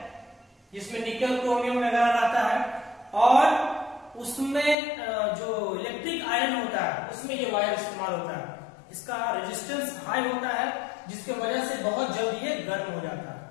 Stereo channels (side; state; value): right; drops out; at 4.8 s